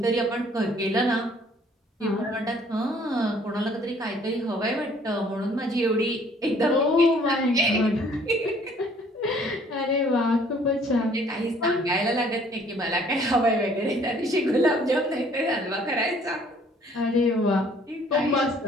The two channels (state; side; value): normal; both; correlation 0.59